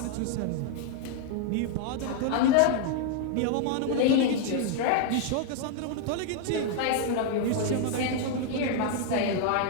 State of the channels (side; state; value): both; different; correlation 0.00